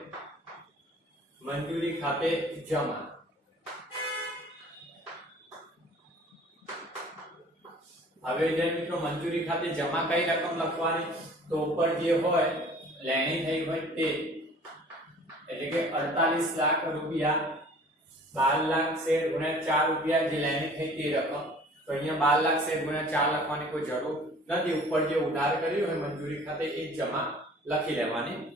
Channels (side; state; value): both; normal; correlation 0.49